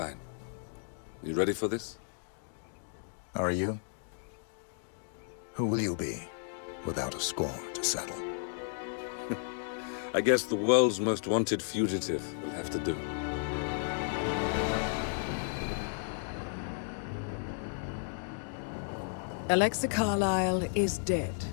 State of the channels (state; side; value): silent; right; digital silence